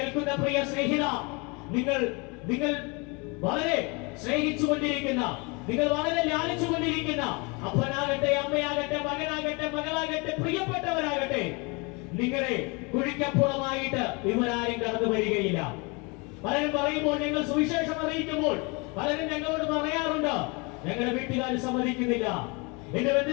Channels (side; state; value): right; quieter; 29.4 dB